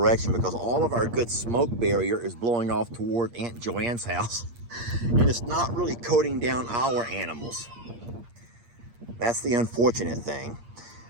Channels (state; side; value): late; left; 8.5 ms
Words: because all of our good smoke barrier is blowing off toward Aunt Joanne's house. And it's not really coating down our animals. That's the unfortunate thing.